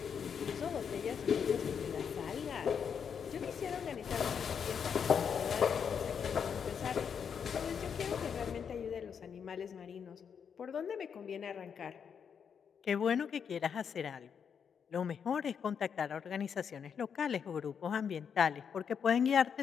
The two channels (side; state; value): right; quieter; 7.1 dB